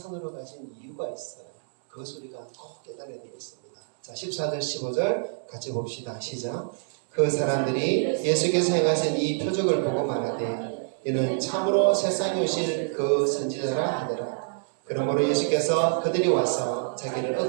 가신 이유가 있어요. 그 소리가 꼭 깨달아야 되겠습니다. 자, 14절 15절 같이 봅시다. 시작. 그 사람들이 예수께서 행하신 이 표적을 보고 말하되 이는 참으로 세상에 오실 그 선지자라 하더라. 그러므로 예수께서 그들이 와서 자기를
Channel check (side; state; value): left; silent; digital silence